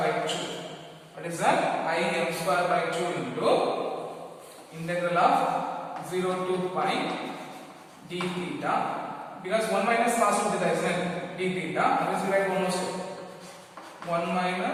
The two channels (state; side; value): identical; both; correlation 1.00